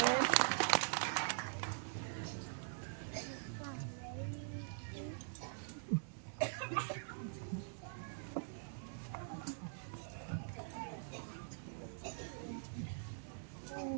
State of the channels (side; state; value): left; silent; digital silence